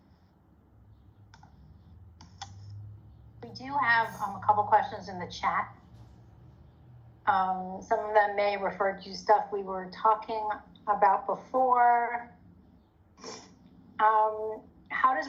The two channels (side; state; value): both; identical; correlation 1.00